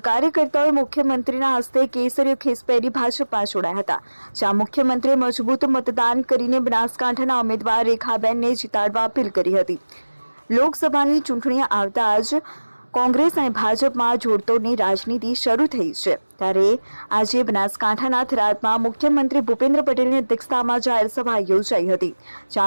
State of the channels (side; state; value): both; inverted; correlation -1.00